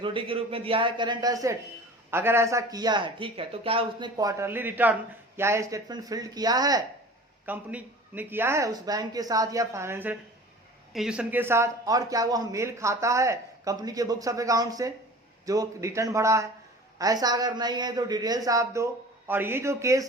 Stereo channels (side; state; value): both; normal; correlation 0.41